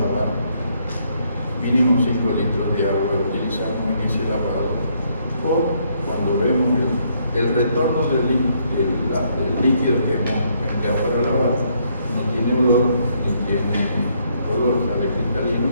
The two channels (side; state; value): both; inverted; correlation -0.71